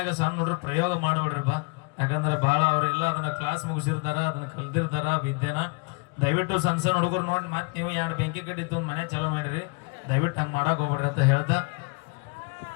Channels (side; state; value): right; quieter; 32.3 dB